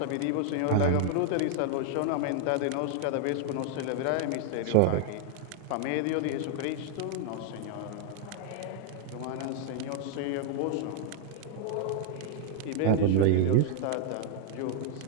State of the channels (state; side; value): different; both; correlation 0.00